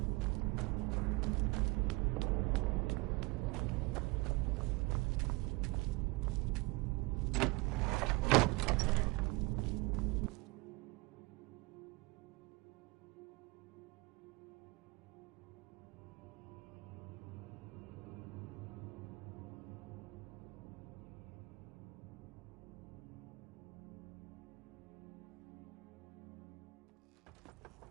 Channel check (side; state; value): left; quieter; 24.6 dB